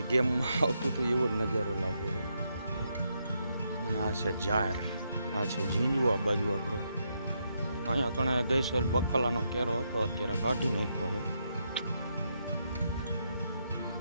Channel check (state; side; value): inverted; both; correlation -0.80